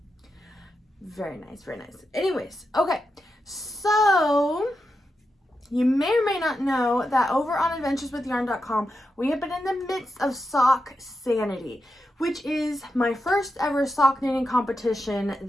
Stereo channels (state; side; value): normal; both; correlation 0.88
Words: Very nice, very nice. Anyways, okay. So you may or may not know that over on adventureswithyarn.com, we have been in the midst of Sock Sanity, which is my first ever sock knitting competition